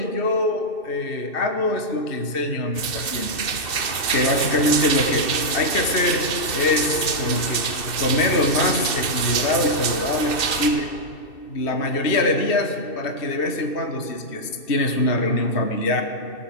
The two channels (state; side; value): late; right; 2.6 ms